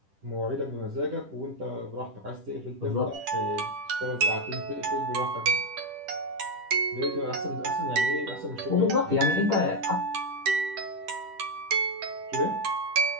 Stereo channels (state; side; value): late; left; 10 ms